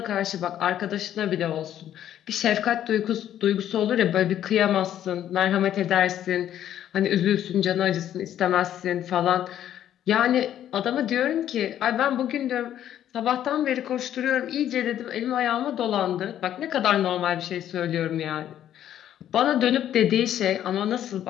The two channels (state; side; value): quieter; right; 11.1 dB